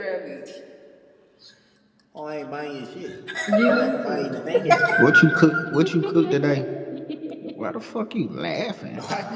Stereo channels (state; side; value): identical; both; correlation 1.00